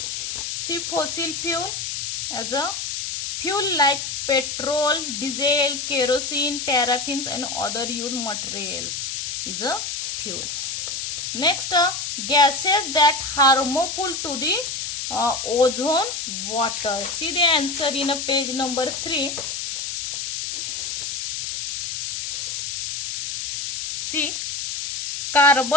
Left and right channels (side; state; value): left; noise; hiss, 3 dB below the sound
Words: See, fossil fuel as a fuel like petrol, diesel, kerosene, paraffins and other used materials is a fuels. Next, gases that harmful to the ozone water. See the answer in page number 3. See,